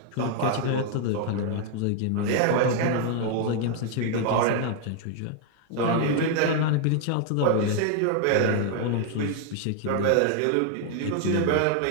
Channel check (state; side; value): different; both; correlation 0.00